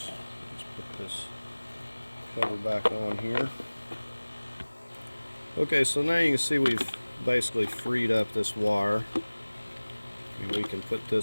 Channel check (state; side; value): inverted; both; correlation -1.00